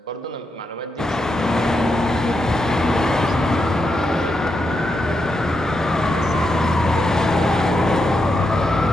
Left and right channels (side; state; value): both; normal; correlation 0.84